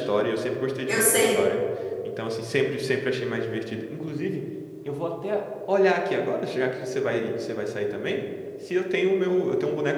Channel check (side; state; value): both; identical; correlation 1.00